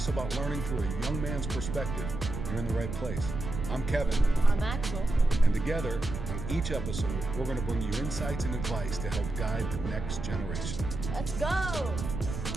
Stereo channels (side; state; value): right; noise; rumble, 6 dB below the sound